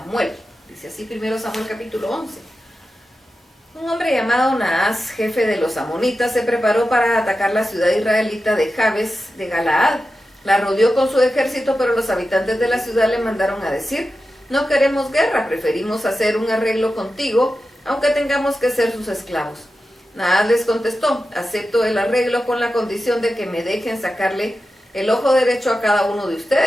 Dice así primero Samuel capítulo 11. Un hombre llamado Naas, jefe de los amonitas, se preparó para atacar la ciudad israelita de Jabes de Galaad. La rodeó con su ejército, pero los habitantes de la ciudad le mandaron a decir: no queremos guerra, preferimos hacer un arreglo contigo, aunque tengamos que ser sus esclavos. Naas les contestó: acepto el arreglo con la condición de que me dejen sacarle el ojo derecho a cada uno de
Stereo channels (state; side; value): normal; both; correlation 0.92